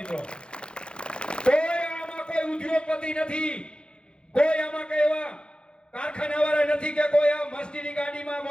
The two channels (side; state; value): right; late; 0.054 ms